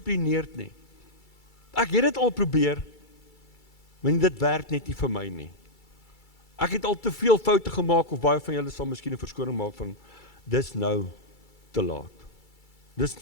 nie. Ek het dit al probeer, maar dit werk net nie vir my nie. Ek het al te veel foute gemaak, of baie van julle sal miskien 'n verskoning maak van, dis nou te laat. Dis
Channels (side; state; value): right; late; 2.3 ms